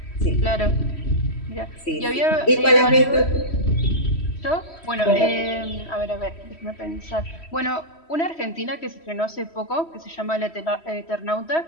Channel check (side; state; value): right; late; 3.1 ms